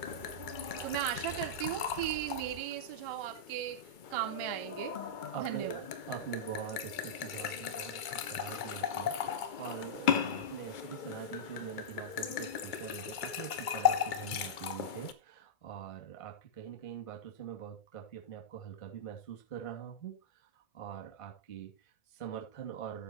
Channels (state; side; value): late; right; 2.3 ms